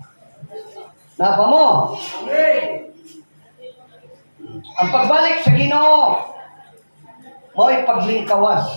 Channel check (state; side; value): inverted; both; correlation -1.00